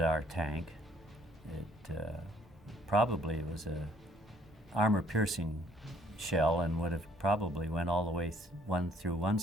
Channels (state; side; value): normal; both; correlation 0.61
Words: our tank. It probably was a armor-piercing shell, and would have probably went all the way through one